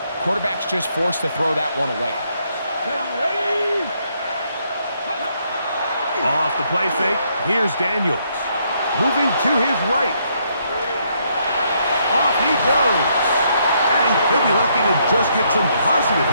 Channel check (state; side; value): inverted; both; correlation -0.73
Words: quarterback's just forced to throw that one away. Off the play fake, here's Daniels. Moving to his right. Off he goes. And he'll be lucky to just get some positive